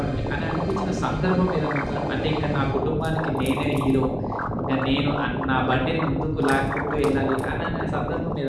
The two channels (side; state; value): both; identical; correlation 1.00